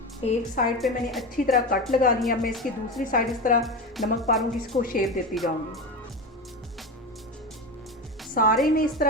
एक साइड पे मैंने अच्छी तरह कट लगा लिया। मैं इसकी दूसरी साइड इस तरह नमक पारों की इसको शेप देती जाऊँगी। सारे में इस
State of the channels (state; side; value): normal; both; correlation 0.22